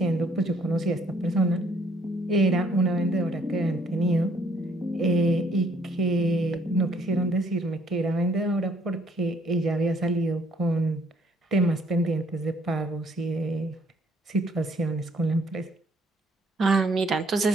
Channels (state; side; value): normal; both; correlation 0.64